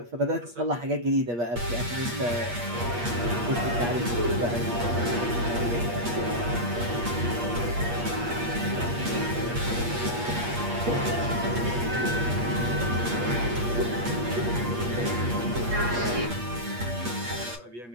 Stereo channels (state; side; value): late; left; 8.4 ms